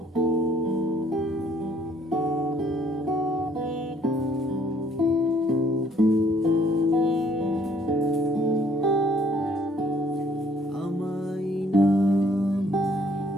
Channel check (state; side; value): normal; both; correlation 0.63